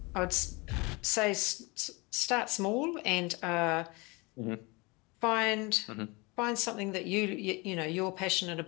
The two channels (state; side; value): quieter; right; 26.6 dB